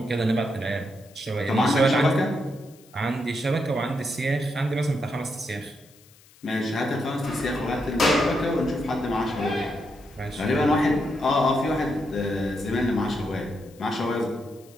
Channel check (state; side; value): noise; left; hiss, 27 dB below the sound